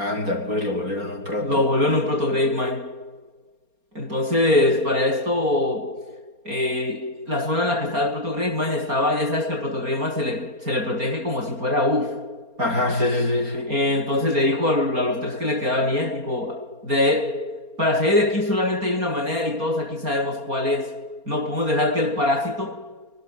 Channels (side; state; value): left; late; 4.3 ms